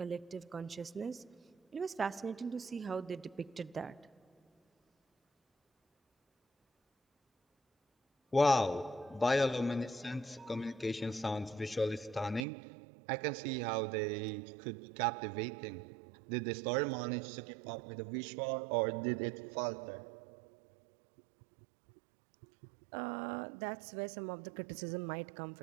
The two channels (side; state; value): left; drops out; at 12.5 s